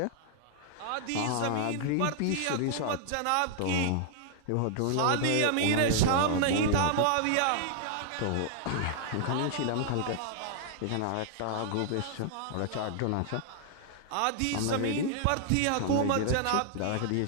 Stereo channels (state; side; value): different; both; correlation -0.01